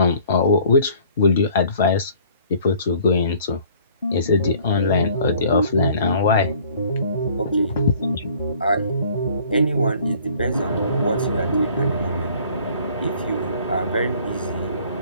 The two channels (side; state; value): both; inverted; correlation -0.54